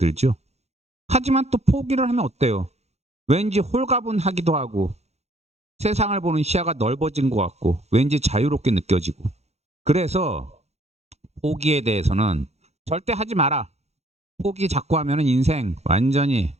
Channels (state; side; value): late; left; 0.31 ms